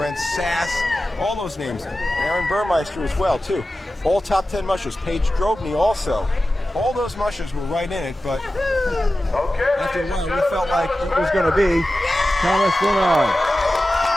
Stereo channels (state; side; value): normal; both; correlation 0.95